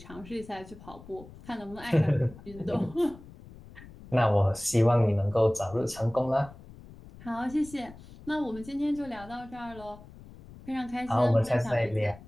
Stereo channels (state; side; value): noise; left; rumble, 19 dB below the sound